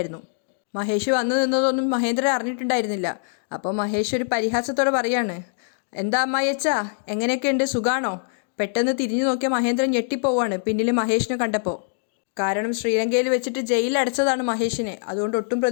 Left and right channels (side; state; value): right; silent; digital silence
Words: മഹേഷ് വന്നു നിന്നതൊന്നും മഹേന്ദ്രൻ അറിഞ്ഞിട്ടുണ്ടായിരുന്നില്ല. അപ്പോൾ മഹേഷ് ഒരു പരിഹാസത്തോടെ പറയാണ്, എന്താ അമ്മായിയച്ചാ, എങ്ങനെയൊക്കെയുണ്ട്, സുഖാണോ? പെട്ടെന്ന് തിരിഞ്ഞു നോക്കിയ മഹേന്ദ്രൻ ഞെട്ടിപ്പോവാണ് പിന്നിൽ മഹേഷിനെ കണ്ടപ്പോൾ. കാരണം ശ്രീലങ്കയിൽ വെച്ചിട്ട് ജയിലിലടച്ചതാണ് മഹേഷിനെ. അതുകൊണ്ട് ഒട്ടും